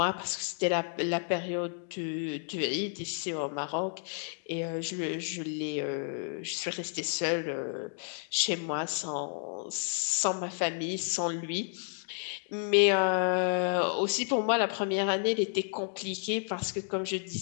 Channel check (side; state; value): right; silent; 57 dB below the other